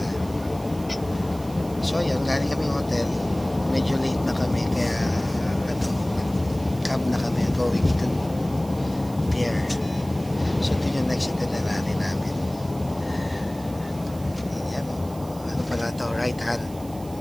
So ayan, galing kami hotel. Medyo late na kami kaya ano, cab na kami going to pier. So ito yung next itinerary namin. Yan o. Ano pala ito? Right hand.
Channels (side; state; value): right; noise; hiss, 21 dB below the sound